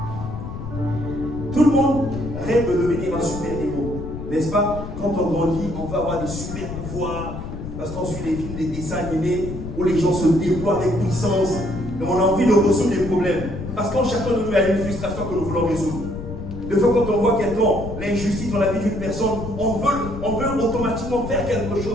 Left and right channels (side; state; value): left; noise; rumble, 8 dB below the sound